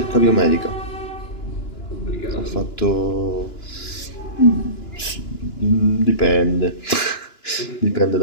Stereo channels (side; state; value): right; late; 2.9 ms